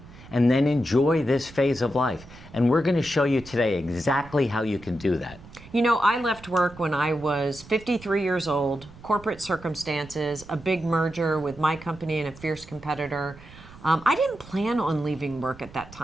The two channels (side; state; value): right; noise; rumble, 19 dB below the sound